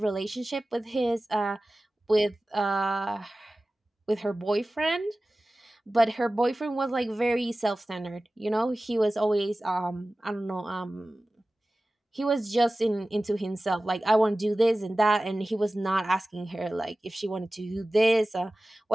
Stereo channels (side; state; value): both; normal; correlation 0.97